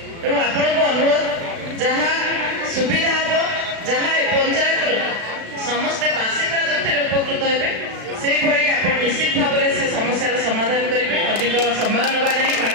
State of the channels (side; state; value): left; late; 36 ms